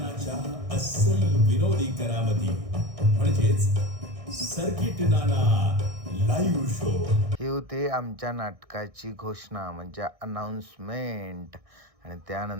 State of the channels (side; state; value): left; late; 1.6 ms